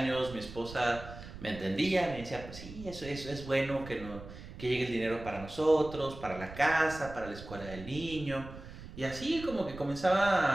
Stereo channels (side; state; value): right; noise; rumble, 13 dB below the sound